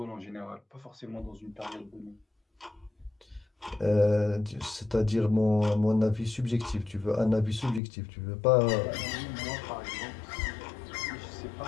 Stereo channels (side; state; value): right; drops out; at 7.8 s